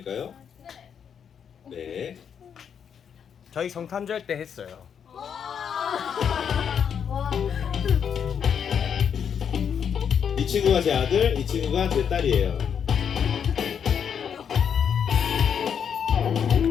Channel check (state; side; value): quieter; right; 7.7 dB